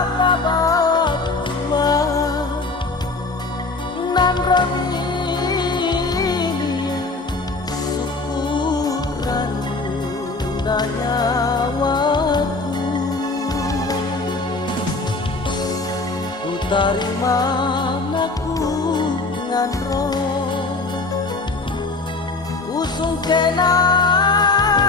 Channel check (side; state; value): right; quieter; 3.5 dB